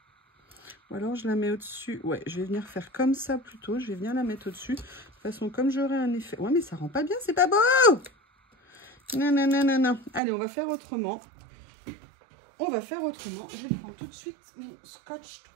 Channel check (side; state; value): left; drops out; at 10.2 s